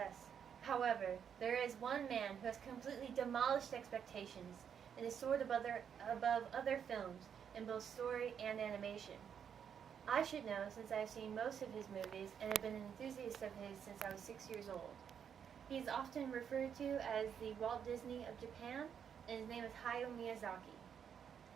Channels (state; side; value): quieter; left; 7.9 dB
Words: However, there is one man who has completely demolished expectations and is soared above other films in both story and animation. I should know since I have seen most of his movies and have been an enthusiast of his since I was 6 years old. He is often referred to as the Walt Disney of Japan, and his name is Hayao Miyazaki.